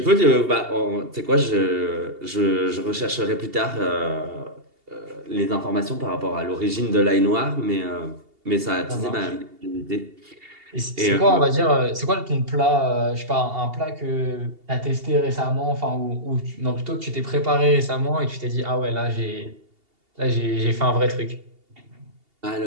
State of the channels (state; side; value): late; left; 2.8 ms